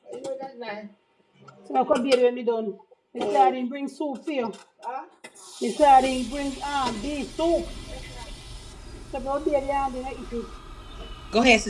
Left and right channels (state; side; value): identical; both; correlation 1.00